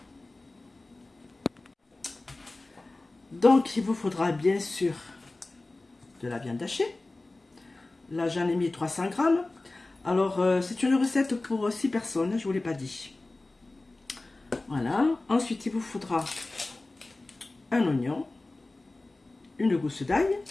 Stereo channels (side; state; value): right; quieter; 3.0 dB